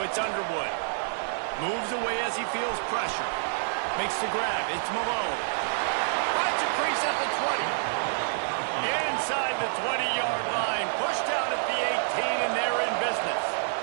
it's Underwood. Moves away as he feels pressure. Makes the grab, it's Malone. Finds a crease at the 20. Inside the 20-yard line. Pushed out at the 18, and they're in business.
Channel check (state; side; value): silent; left; digital silence